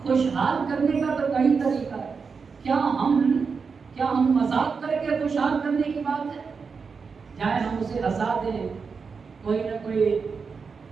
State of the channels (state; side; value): quieter; left; 5.3 dB